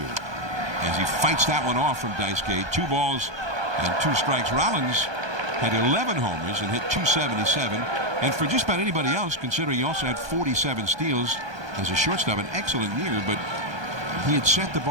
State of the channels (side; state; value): left; late; 1.2 ms